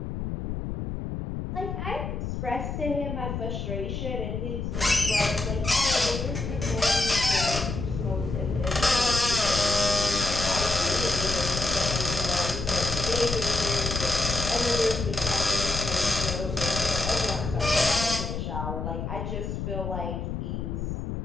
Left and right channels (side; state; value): left; noise; rumble, 4 dB below the sound